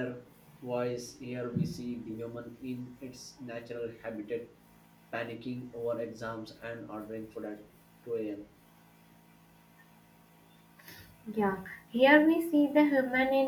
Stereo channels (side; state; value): both; identical; correlation 1.00